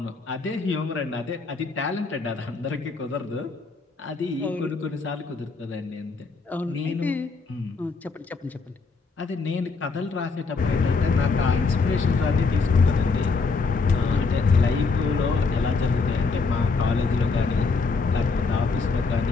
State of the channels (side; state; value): right; quieter; 4.3 dB